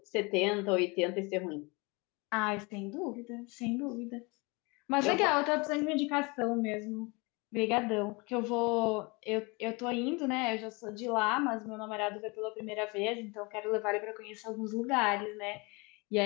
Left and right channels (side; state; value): right; quieter; 27.7 dB